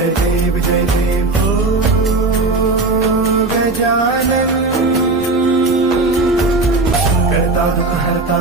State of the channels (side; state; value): left; quieter; 3.3 dB